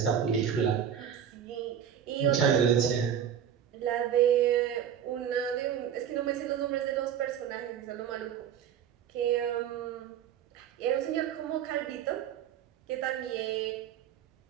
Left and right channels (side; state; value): left; quieter; 9.0 dB